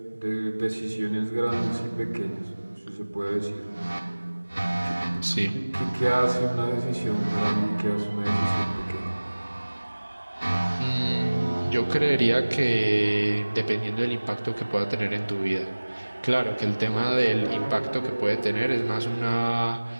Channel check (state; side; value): inverted; both; correlation -1.00